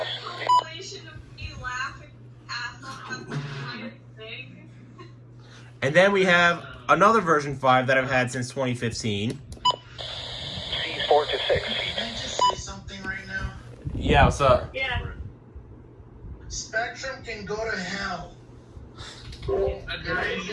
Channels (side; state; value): both; identical; correlation 1.00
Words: And then we have another version 5 that I've had since 2015. Seas 4 to 6 feet. Can I just say something right now? Yeah, what's up? Yeah. Spectrum can go to hell. They